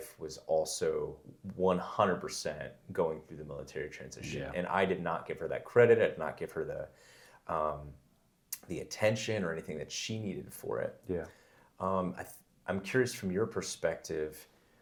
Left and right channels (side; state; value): both; identical; correlation 1.00